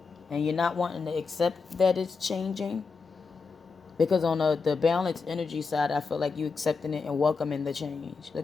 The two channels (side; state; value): right; quieter; 4.7 dB